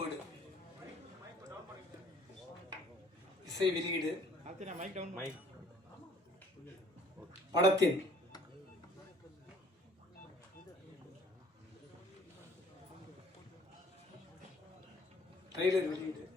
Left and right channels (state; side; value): normal; both; correlation 0.57